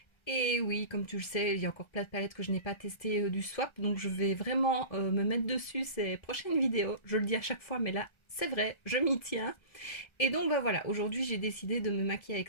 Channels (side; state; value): right; late; 1.3 ms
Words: Et oui, comme tu le sais, il y a encore plein de palettes que je n'ai pas testées du swap. Donc je vais vraiment me mettre dessus ces prochaines vidéos. Je le dis à chaque fois, mais là, c'est vrai, je m'y tiens. Et donc bah voilà, aujourd'hui j'ai décidé de me maquiller avec